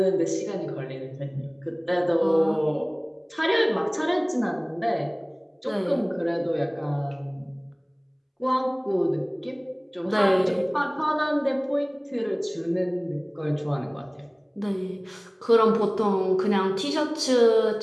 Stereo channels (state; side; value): identical; both; correlation 1.00